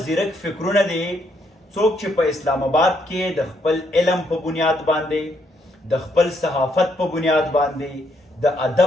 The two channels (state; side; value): normal; both; correlation 0.74